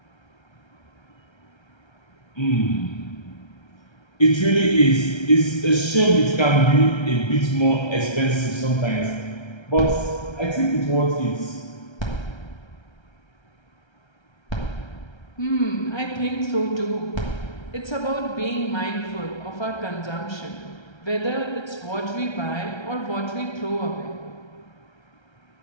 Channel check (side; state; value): right; late; 1.3 ms